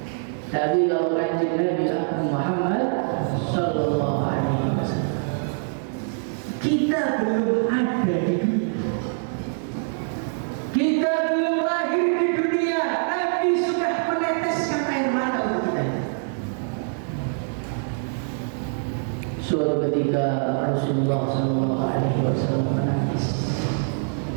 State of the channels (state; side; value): silent; left; 62 dB below the other